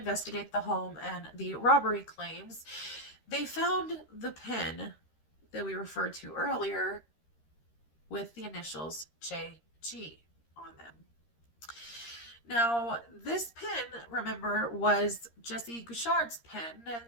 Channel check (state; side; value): late; right; 13 ms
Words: the home and the robbery claims, they found the pen that we referred to earlier with the initials JG on them. Now, this pen, remember, was Jesse Gouchard's pen,